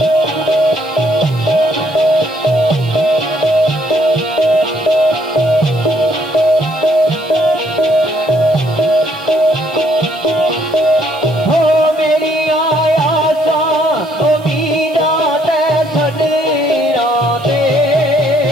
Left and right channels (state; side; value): noise; right; hiss, 26 dB below the sound